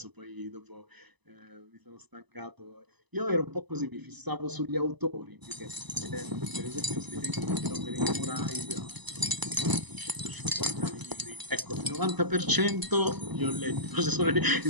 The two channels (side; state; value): left; late; 1.0 ms